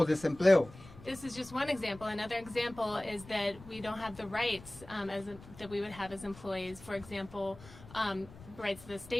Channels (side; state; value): left; noise; rumble, 18 dB below the sound